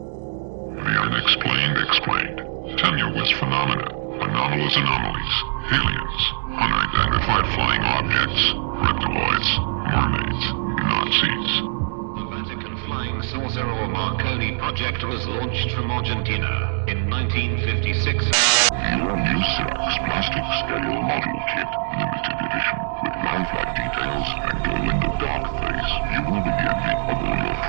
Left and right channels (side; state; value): left; silent; 64 dB below the other